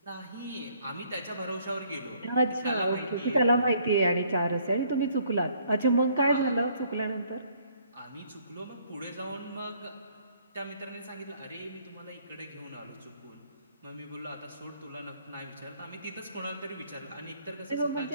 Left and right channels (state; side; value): inverted; both; correlation -0.64